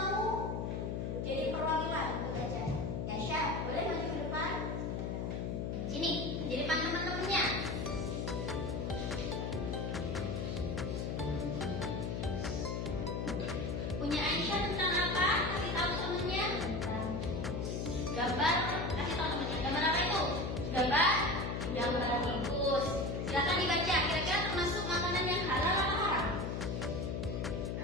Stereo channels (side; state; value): left; noise; hum, 2 dB below the sound